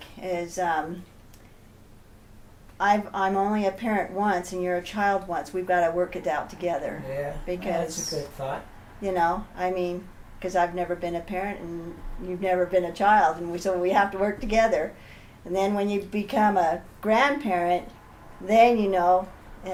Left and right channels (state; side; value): identical; both; correlation 1.00